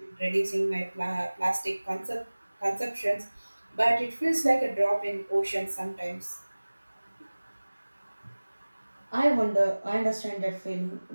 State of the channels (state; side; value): inverted; both; correlation -1.00